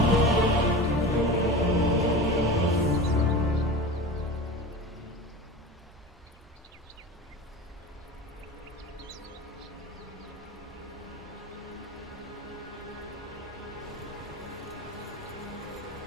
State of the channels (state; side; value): normal; both; correlation 0.30